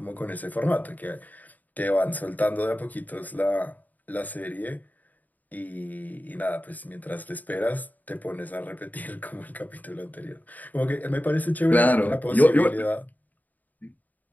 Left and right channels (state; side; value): late; right; 0.081 ms